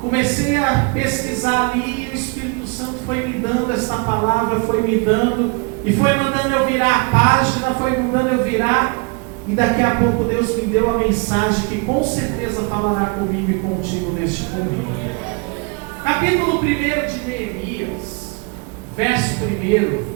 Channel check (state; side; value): quieter; left; 31.3 dB